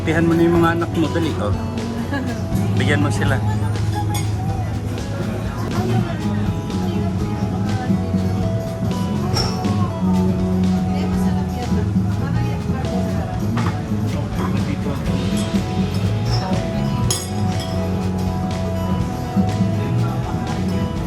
mo na yung mga anak mo. Dali, oh. Bigyan mo sila.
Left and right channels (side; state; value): both; identical; correlation 1.00